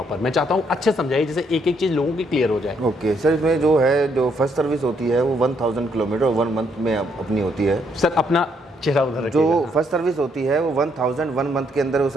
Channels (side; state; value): both; normal; correlation 0.72